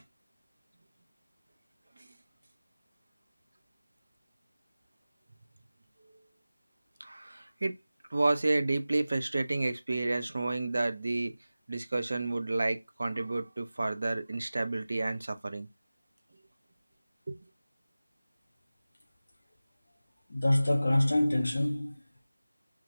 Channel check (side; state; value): both; inverted; correlation -0.97